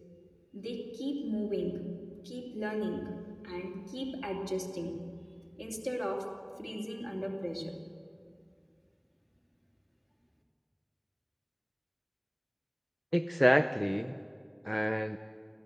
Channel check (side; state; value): both; identical; correlation 1.00